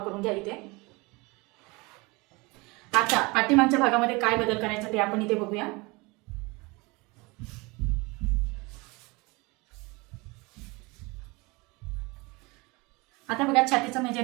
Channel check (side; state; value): left; quieter; 25.4 dB